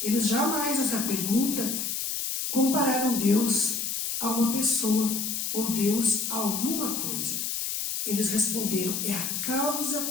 Eles jamais, nessa pergunta, compararam Deus a uma pessoa ou Deus a alguma coisa. Eles responderam: é a causa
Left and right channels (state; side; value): noise; left; hiss, 2 dB below the sound